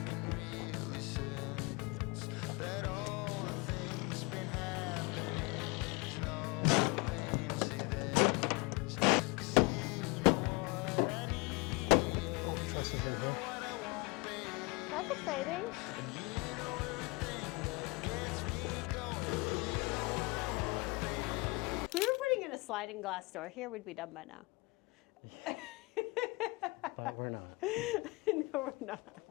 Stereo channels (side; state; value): right; quieter; 26.5 dB